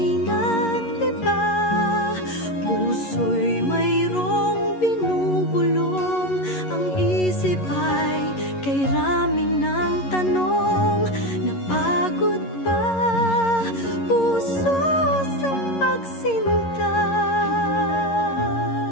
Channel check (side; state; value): right; late; 11 ms